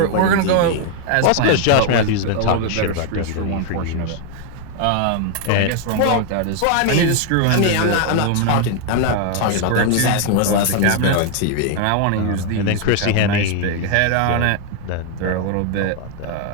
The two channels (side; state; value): both; different; correlation 0.00